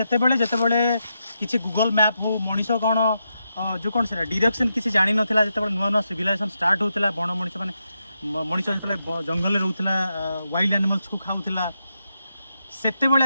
बेले जते बेले किछि गूगल मैप हो मणिसो कोन जो कोन से डायरेक्शन किछि जानि नथिला जते बेले नुवा नुवा सिविलाइजेशन स्टार्ट होतला बण मणि से माने मणिसो जते बेले जंगल रे रहउतला वाइल्ड एनिमल्स को खाउतला सेते बेले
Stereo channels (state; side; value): inverted; both; correlation -0.84